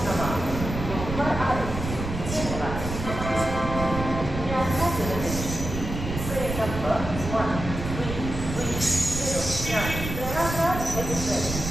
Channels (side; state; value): right; noise; rumble, 6 dB below the sound